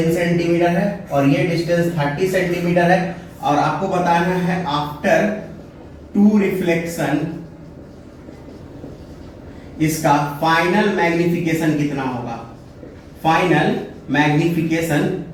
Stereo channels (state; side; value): identical; both; correlation 1.00